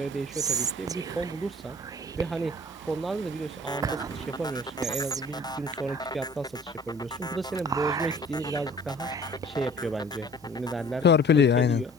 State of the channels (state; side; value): normal; both; correlation 0.49